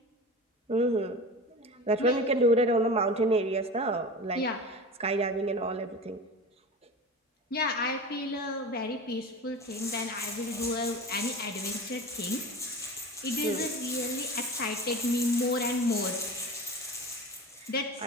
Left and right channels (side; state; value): both; normal; correlation 0.32